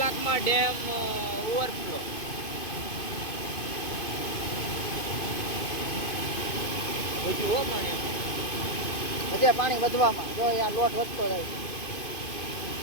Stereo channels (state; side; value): late; right; 2.5 ms